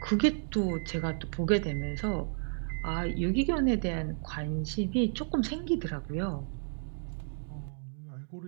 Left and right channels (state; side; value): silent; left; digital silence